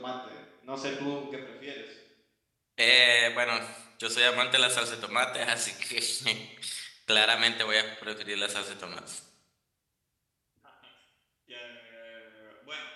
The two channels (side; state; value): both; identical; correlation 1.00